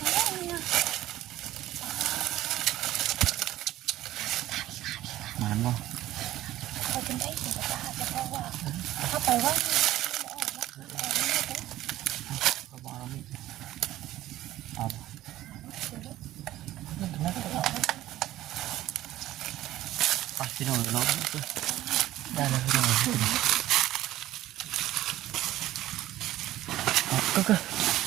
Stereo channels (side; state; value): left; quieter; 14.8 dB